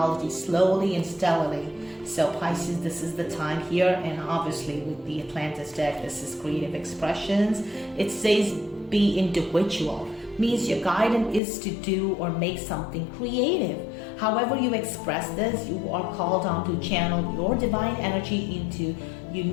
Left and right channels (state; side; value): drops out; right; at 11.4 s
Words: slowly and steadily. So Pisces, this is the time here. And obviously with the Atlantis deck, this is creative expressions. It says be individual. Means your guidance is to do or make something creative. However you express this, you are called on to channel your divine energy into